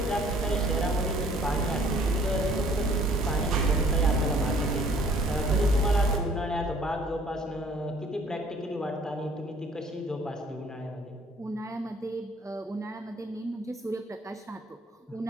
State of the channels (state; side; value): normal; both; correlation 0.57